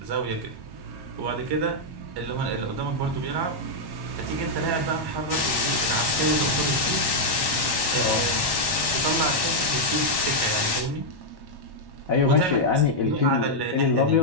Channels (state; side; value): late; left; 1.1 ms